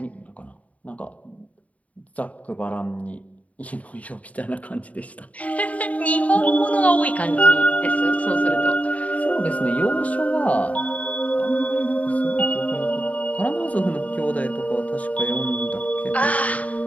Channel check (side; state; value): right; late; 0.069 ms